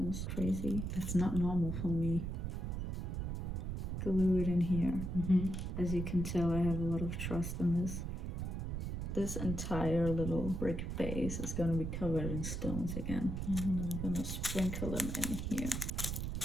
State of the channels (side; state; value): right; noise; rumble, 3 dB below the sound